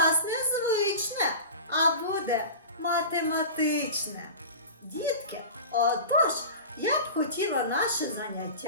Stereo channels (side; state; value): both; inverted; correlation -0.33